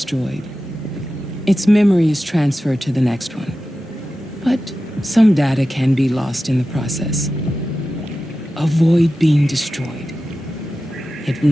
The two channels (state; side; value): normal; both; correlation 0.93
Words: its memory is transferred to the next one. But some data can be lost in the process. Avoid being destroyed. It